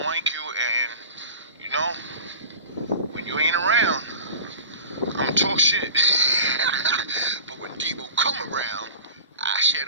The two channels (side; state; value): both; inverted; correlation -0.37